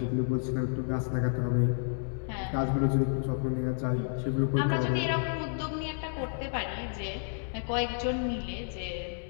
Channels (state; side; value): silent; right; 57 dB below the other